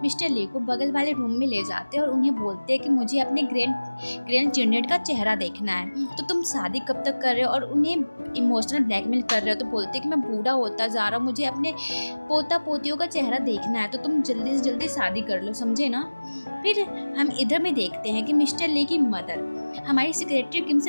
मिस्टर ली को बगल वाले रूम में ले जाते हैं और उन्हें बोलते हैं कि मुझे अपने ग्रैंड चिल्ड्रन का चेहरा देखना है, तो तुम शादी कब तक कर रहे हो। और उन्हें इमोशनल ब्लैकमेल कर रहे हो, तो बोलते हैं कि मैं बूढ़ा होता जा रहा हूँ, मुझे अपने पोता पोतियों का चेहरा देखना है, तो तुम जल्दी से जल्दी शादी कर लो, समझे ना। फिर हम इधर में देखते हैं कि मिस्टर ली की मदर हमारी सेक्रेटरी किम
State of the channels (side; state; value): both; inverted; correlation -1.00